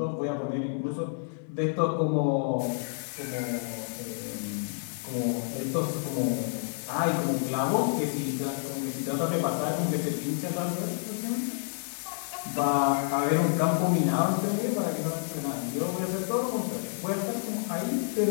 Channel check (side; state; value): right; silent; digital silence